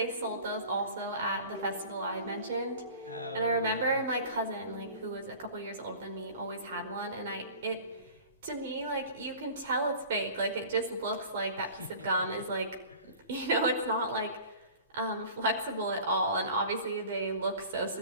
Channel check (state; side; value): inverted; both; correlation -0.42